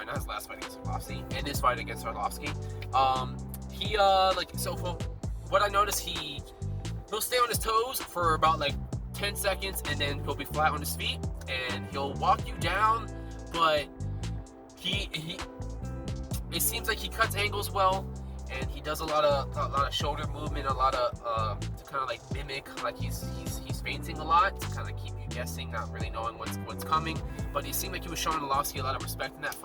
not his last fight against Arlovsky, in his fight against Arlovsky, what I noticed, he'll stay on his toes for about 10 seconds, and then he'll be flat on his feet, and he'll walk you down, but it seems like he cuts angles well, and he does a lot of shoulder movement, a lot of to kind of mimic, he's feinting a lot to kind of keep you guessing, not really knowing what's coming. But it seemed like he was showing Arlovsky a lot of respect in that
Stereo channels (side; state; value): both; identical; correlation 1.00